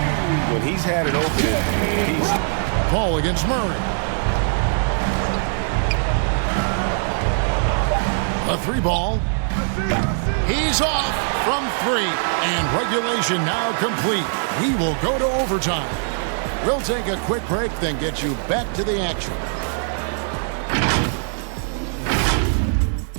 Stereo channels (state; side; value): silent; left; 65 dB below the other